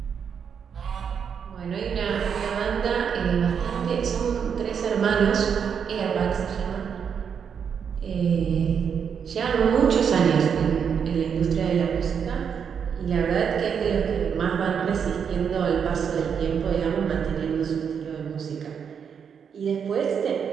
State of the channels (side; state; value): left; quieter; 7.2 dB